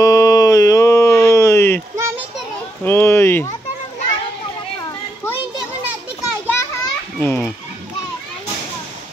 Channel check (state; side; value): normal; both; correlation 0.81